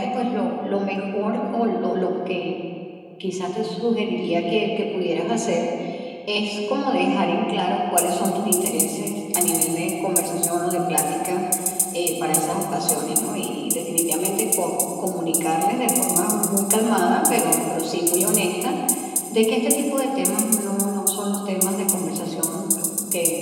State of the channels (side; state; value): both; identical; correlation 1.00